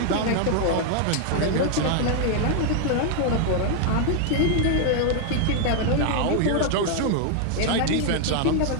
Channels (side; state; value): both; different; correlation 0.00